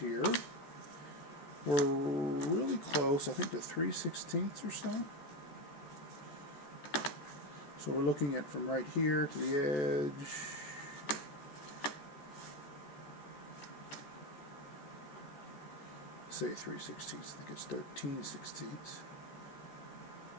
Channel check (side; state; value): right; late; 14 ms